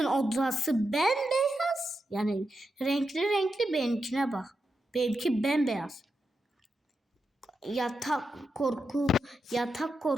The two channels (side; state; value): both; normal; correlation 0.87